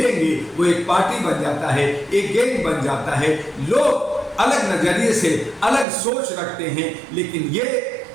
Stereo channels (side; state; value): left; drops out; at 5.9 s